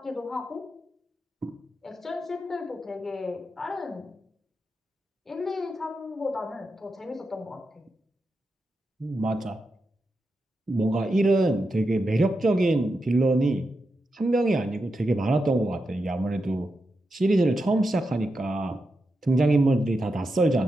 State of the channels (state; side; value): normal; both; correlation 0.87